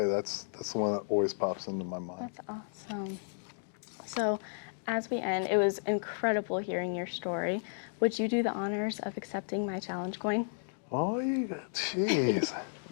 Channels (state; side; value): silent; right; digital silence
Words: that's the one that always pops into my mind. That's awesome. So, as we end, it was incredible hearing your story. Would you do the honors of accepting my challenge coin? Oh, jeez.